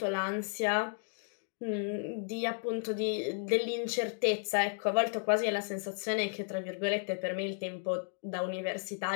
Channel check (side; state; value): right; silent; digital silence